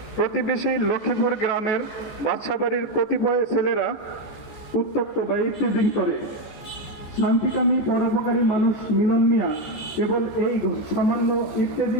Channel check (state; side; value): late; right; 14 ms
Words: প্রতিবেশী লক্ষ্মীপুর গ্রামের বাদশাবাড়ির কতিপয় ছেলেরা উত্তপ্ত বা ইত্তেজিং করে। শান্তিকামী পরোপকারী মানুষ মিলন মিয়া কেবল এই সামান্য